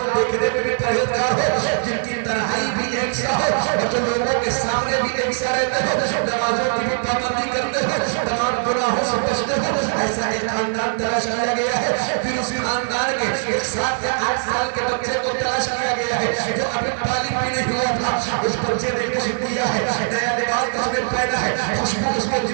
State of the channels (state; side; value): silent; left; digital silence